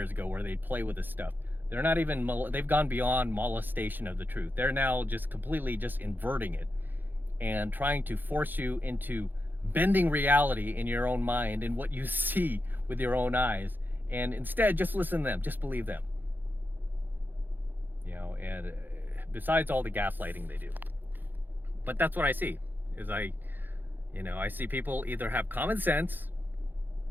ago, where they play with this stuff. They're not even, they've gone beyond molestation of the truth. They're now just completely just inverting it and trying to force you into bending reality in your own mind and what you see with your own eyes. And instead, just listen to them, just believe them. And besides all the gaslighting they do. But that's what I see. I see people either have common sense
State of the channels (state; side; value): late; left; 0.090 ms